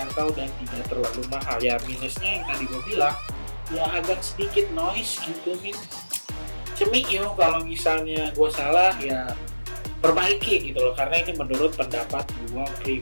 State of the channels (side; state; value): both; inverted; correlation -1.00